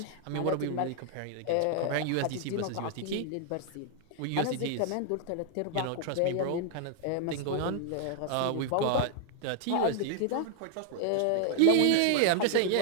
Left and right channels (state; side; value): different; both; correlation -0.01